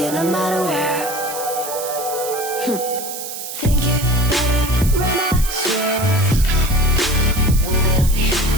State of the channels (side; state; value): right; noise; hiss, 8 dB below the sound